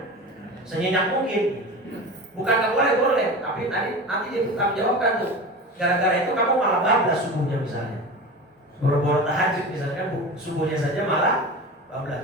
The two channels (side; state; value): both; normal; correlation 0.31